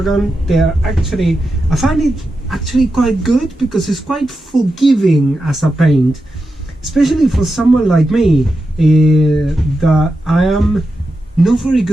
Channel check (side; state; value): both; normal; correlation 0.89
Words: I find it actually quite good because it's quite forgiving as a paint, especially for someone like me that I am not very